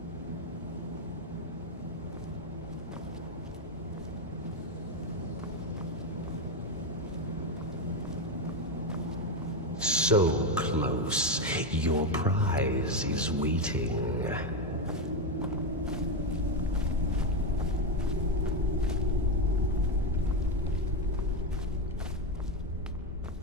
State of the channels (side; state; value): both; normal; correlation 0.09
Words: So close, your prize is waiting.